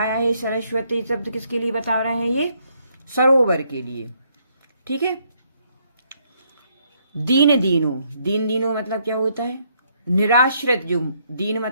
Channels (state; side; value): inverted; both; correlation -0.71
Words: है सरस्वती शब्द, किसके लिए बता रहे हैं ये, सरोवर के लिए। ठीक है, दीन दीनो, दीन दीनो मतलब क्या होता है, निराश्रित। जो दीन